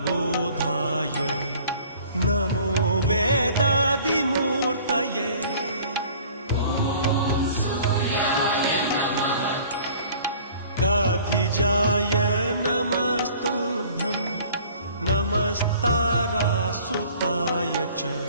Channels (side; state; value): both; inverted; correlation -0.50